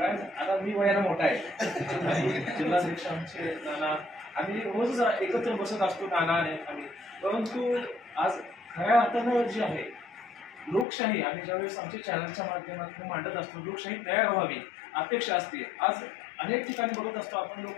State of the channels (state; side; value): drops out; right; at 10.9 s